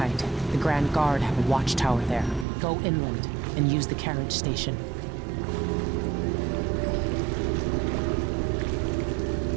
The Grand Guard have a watchtower there. Go inland and use the carriage station.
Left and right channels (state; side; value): drops out; left; at 2.5 s